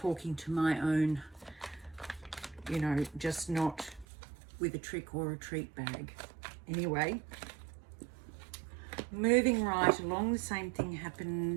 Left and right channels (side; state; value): left; drops out; at 4.0 s